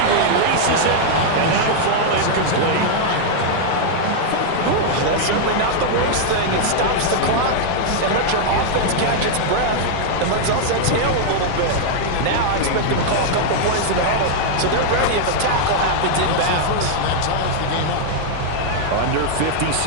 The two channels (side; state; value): both; different; correlation 0.00